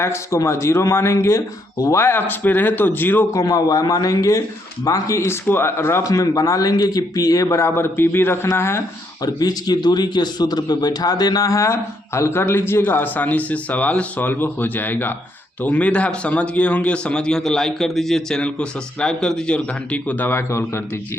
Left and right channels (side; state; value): both; normal; correlation 0.74